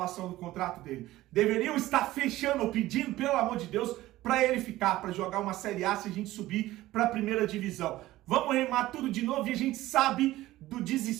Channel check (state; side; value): quieter; left; 16.3 dB